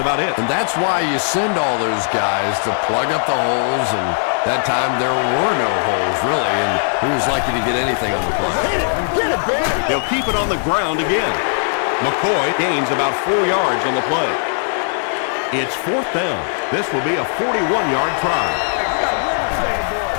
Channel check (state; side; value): silent; right; digital silence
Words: it. And that's why you send all those guys to plug up the holes, and that time there were no holes, really, and he was lucky to get anything on the play. They'll keep it on the ground again. McCoy gains about 4 yards on the play. It's 4th down. This will be a 41-yard try.